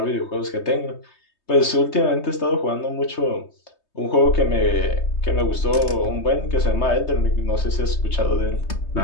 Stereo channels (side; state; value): right; late; 3.2 ms